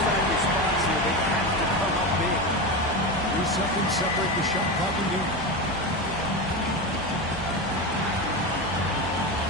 response here. They have to come up big. 3 seconds separate the shot clock and game.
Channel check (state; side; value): normal; both; correlation 0.19